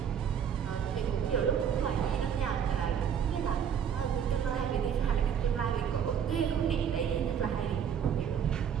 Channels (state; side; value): quieter; left; 8.1 dB